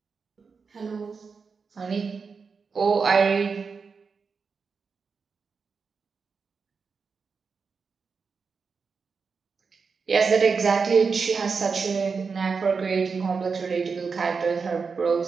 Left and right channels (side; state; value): left; quieter; 5.2 dB